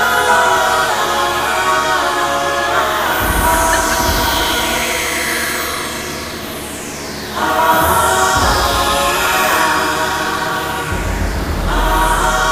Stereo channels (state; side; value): identical; both; correlation 1.00